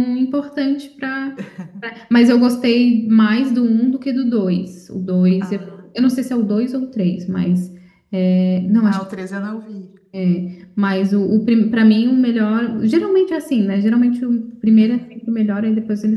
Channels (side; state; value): both; identical; correlation 1.00